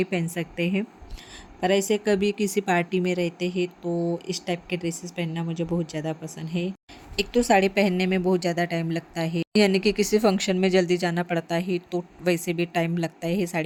पहन सकते हैं, पर ऐसे कभी किसी पार्टी में रहते हैं तो इस टाइप के ड्रेसेस पहनना मुझे बहुत ज़्यादा पसंद है। एक तो साड़ी पहनने में बहुत ज़्यादा टाइम लगता है, यानी कि किसी फंक्शन में जल्दी जाना पड़ता है तो वैसे भी टाइम लगता है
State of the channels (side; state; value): both; identical; correlation 1.00